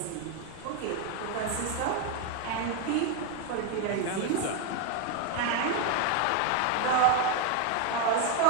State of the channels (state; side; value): different; both; correlation 0.01